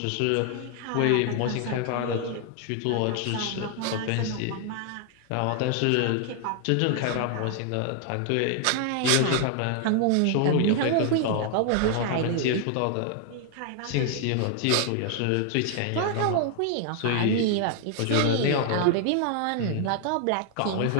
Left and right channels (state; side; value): different; both; correlation 0.00